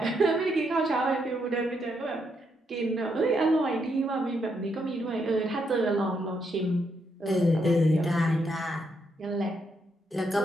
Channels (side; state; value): both; normal; correlation 0.78